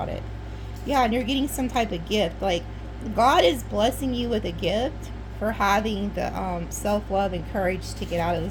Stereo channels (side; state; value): both; identical; correlation 1.00